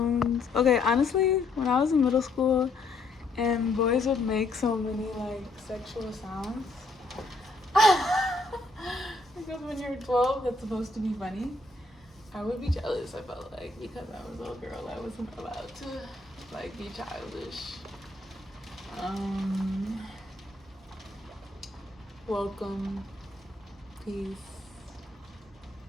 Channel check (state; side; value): quieter; right; 3.3 dB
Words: Okay, honestly, when I was in middle school and boys would make so many like sexual sounds, because when you're 12, that's supposed to be funny. I would be jealous, I felt like, because I was a little girl. I wasn't allowed to like be childish. Welcome, peace,